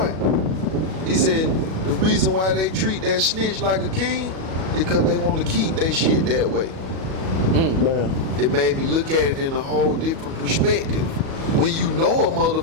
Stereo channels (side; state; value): left; late; 37 ms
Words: He said, the reason why they treat that snitch like a king is because they want to keep their shit that way. It made me look at it in a whole different perspective. When you know a